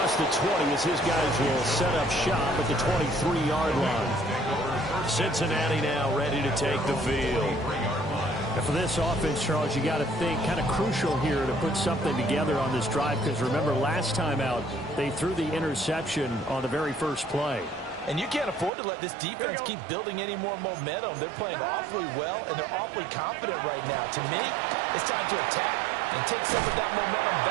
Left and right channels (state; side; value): drops out; left; at 18.7 s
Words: the 20 as his guys will set up shop at the 23-yard line. Cincinnati now ready to take the field. And for this offense, Charles, you got to think kind of crucial here to put something together on this drive because remember last time out they threw the interception on the very first play. And you can't afford to let this defense keep building any more momentum. They're playing awfully well, and they're awfully confident right now. To me, it's time to attack and take some of that momentum